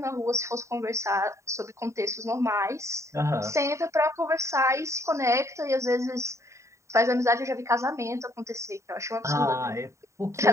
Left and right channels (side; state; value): left; late; 0.14 ms